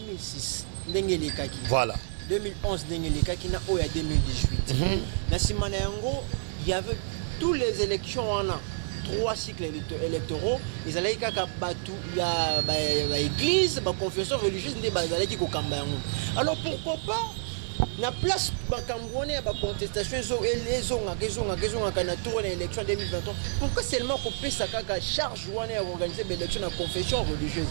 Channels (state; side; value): silent; left; digital silence